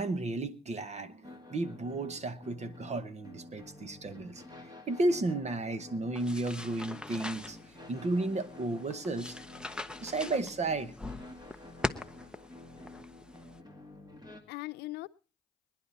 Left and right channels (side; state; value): both; normal; correlation 0.62